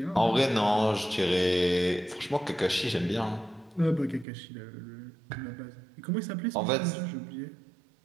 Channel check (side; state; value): left; drops out; at 4.2 s